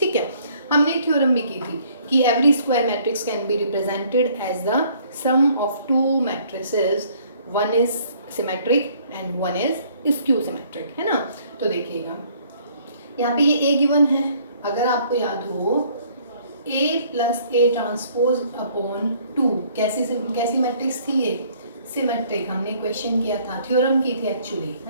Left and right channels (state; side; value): inverted; both; correlation -0.61